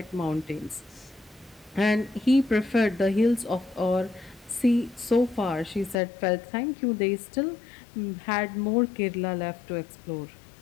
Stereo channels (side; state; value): right; drops out; at 6.0 s